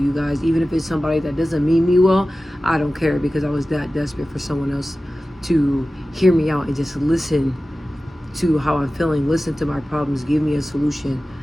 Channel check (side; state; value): both; normal; correlation 0.95